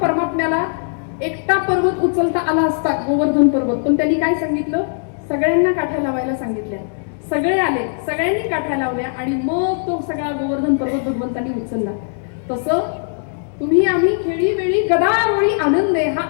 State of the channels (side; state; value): right; silent; digital silence